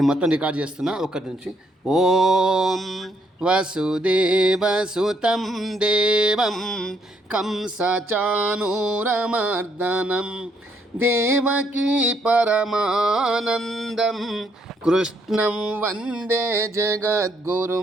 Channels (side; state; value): both; normal; correlation 0.71